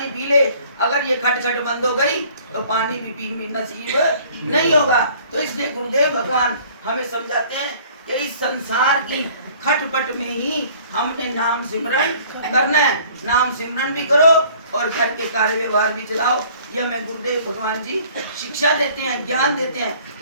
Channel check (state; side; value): inverted; both; correlation -0.54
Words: पी ले, अगर ये खटखट बंद हो गई तो पानी भी पी नसीब नहीं होगा। तो इसलिए गुरुदेव भगवान हमें समझाते हैं कि इस संसार की खटपट में ही हमने नाम सिमरन करना है। नाम सिमरन भी करो और घर के कार्य व्यवहार भी चलाओ। यह हमें गुरुदेव भगवान जी शिक्षा देते हैं, ज्ञान देते हैं।